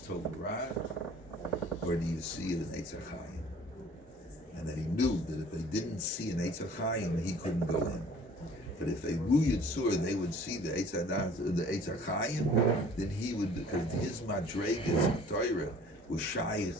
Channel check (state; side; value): normal; both; correlation 0.51